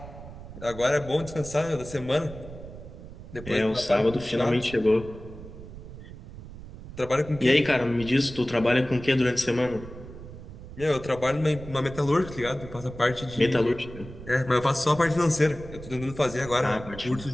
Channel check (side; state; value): right; noise; rumble, 14 dB below the sound